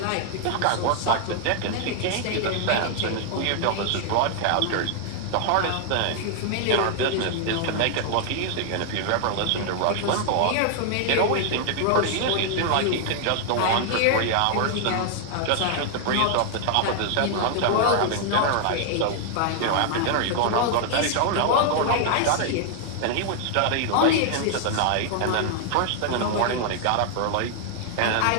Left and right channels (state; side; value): different; both; correlation 0.00